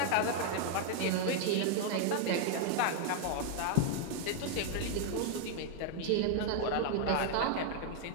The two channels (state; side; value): different; both; correlation 0.00